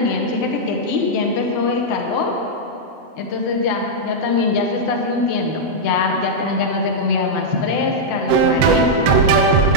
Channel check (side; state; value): left; late; 7.8 ms